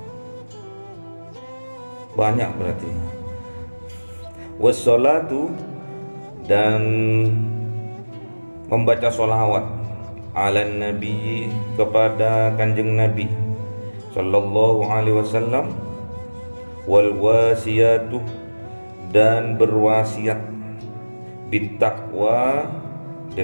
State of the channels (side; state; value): both; inverted; correlation -1.00